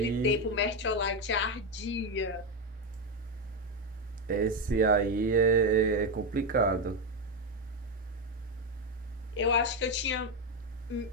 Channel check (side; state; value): both; normal; correlation 0.08